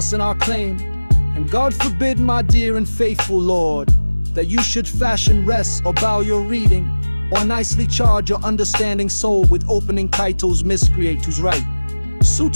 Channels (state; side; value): inverted; both; correlation -1.00